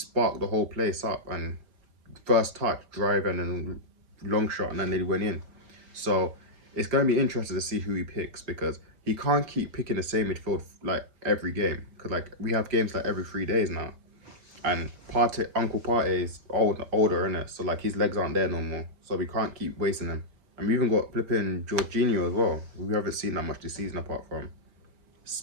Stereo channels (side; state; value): left; late; 5.0 ms